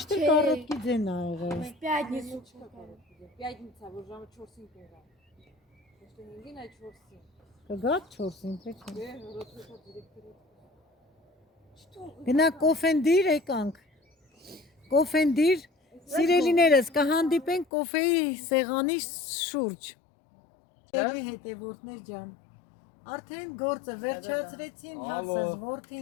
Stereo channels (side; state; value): right; drops out; at 17.7 s